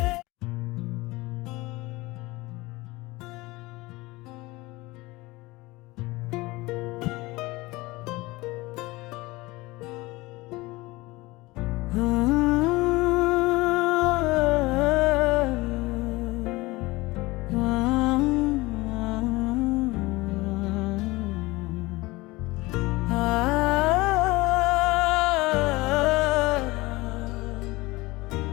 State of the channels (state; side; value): quieter; right; 21.4 dB